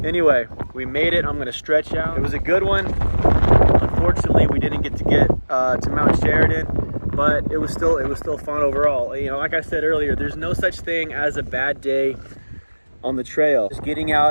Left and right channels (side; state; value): both; inverted; correlation -1.00